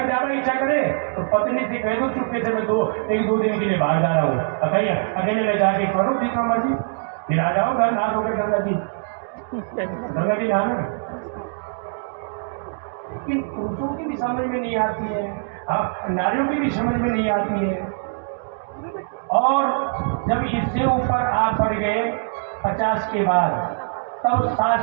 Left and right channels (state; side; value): silent; left; digital silence